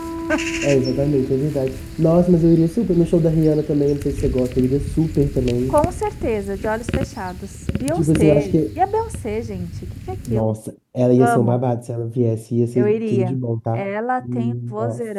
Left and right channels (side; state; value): both; identical; correlation 1.00